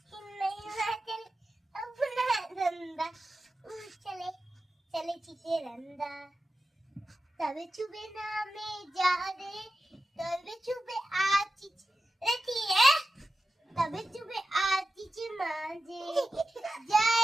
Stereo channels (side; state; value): both; normal; correlation 0.92